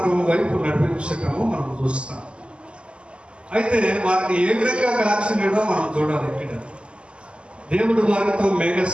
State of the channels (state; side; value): late; left; 0.054 ms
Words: వైపు నడిపించటము మనం చూస్తాం. అయితే వారిని ఏ విధంగా కాల్చినాడో మనం చూడాలి. ఇక్కడ దేవుడు వారితో